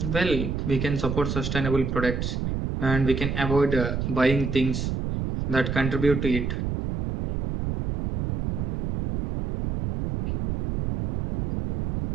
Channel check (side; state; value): right; noise; rumble, 2 dB below the sound